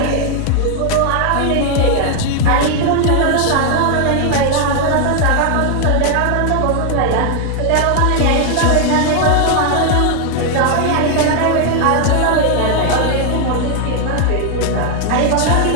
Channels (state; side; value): different; both; correlation 0.00